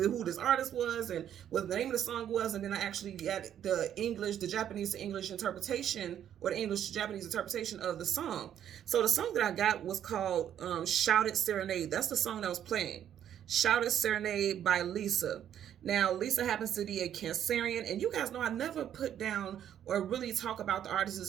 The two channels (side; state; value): left; quieter; 10.1 dB